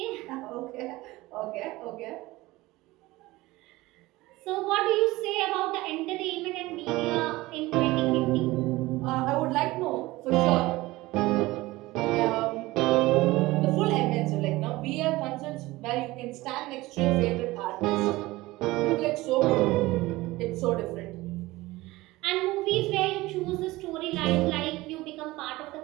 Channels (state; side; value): quieter; left; 19.4 dB